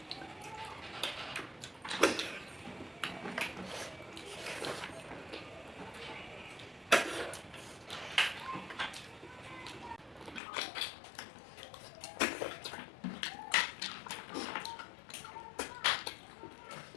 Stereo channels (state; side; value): drops out; right; at 10.4 s